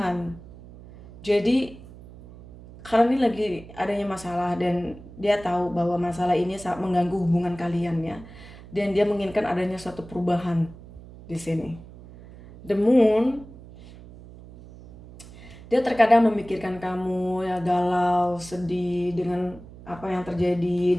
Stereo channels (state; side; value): noise; right; hum, 18 dB below the sound